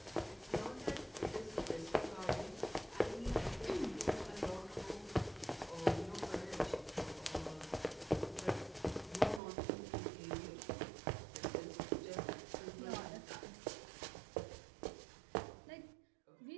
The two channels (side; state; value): left; drops out; at 9.4 s